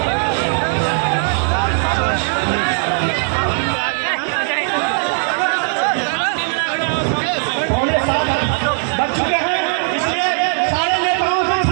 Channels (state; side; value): silent; left; 58 dB below the other